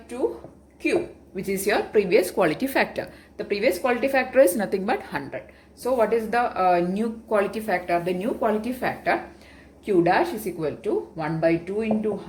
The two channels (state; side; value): identical; both; correlation 1.00